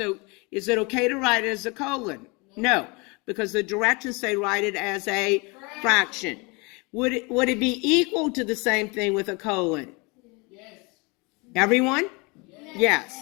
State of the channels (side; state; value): right; quieter; 28.3 dB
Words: is it okay to write it as a colon? No, because the directions say write it as a fraction. Would it be equal to the same thing with a colon? Yes. Everyone?